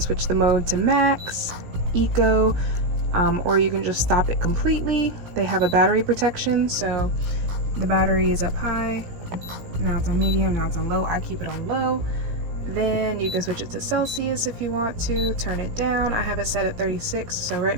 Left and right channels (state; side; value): late; left; 17 ms